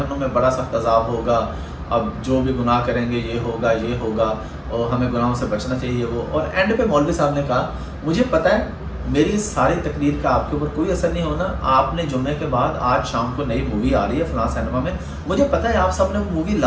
में बड़ा सख्त अज़ाब होगा, अब जो भी गुनाह करेंगे ये होगा और हमें गुनाहों से बचना चाहिए वो। और एंड पे मौलवी साहब ने कहा मुझे पता है मेरी सारी तकरीर का आपके ऊपर कोई असर नहीं होना, आपने जुम्मे के बाद आज शाम को नई मूवी आ रही है फ़लाँ सिनेमा में, मुझे पता है आप सब ने वो मूवी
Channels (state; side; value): identical; both; correlation 1.00